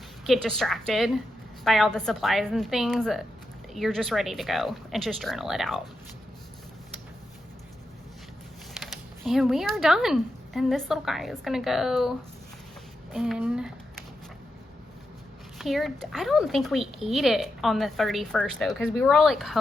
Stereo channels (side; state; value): both; normal; correlation 0.87